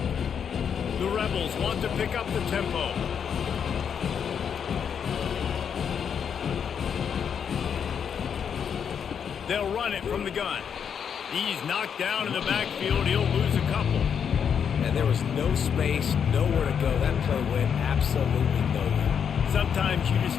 The Rebels want to pick up the tempo. They'll run it from the gun. He's knocked down in the backfield. He'll lose a couple. And there was no space, nowhere to go. That play went absolutely nowhere. Sometimes you just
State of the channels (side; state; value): right; quieter; 7.5 dB